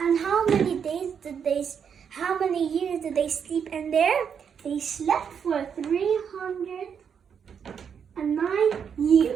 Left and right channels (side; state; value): left; quieter; 7.3 dB